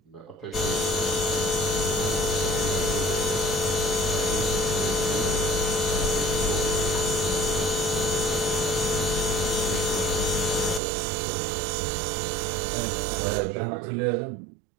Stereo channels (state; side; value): drops out; left; at 10.8 s